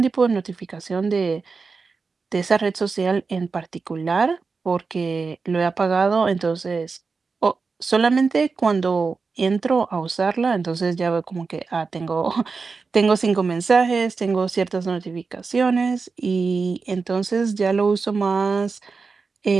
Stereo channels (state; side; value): quieter; left; 4.6 dB